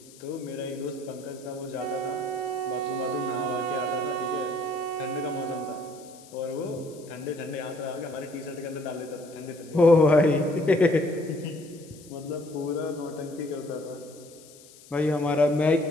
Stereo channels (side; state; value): left; noise; hiss, 22 dB below the sound